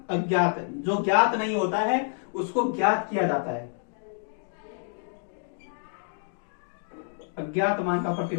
अज्ञात। जो ज्ञात नहीं होता है उसको ज्ञात किया जाता है। अज्ञात मान का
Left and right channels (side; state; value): right; silent; 59 dB below the other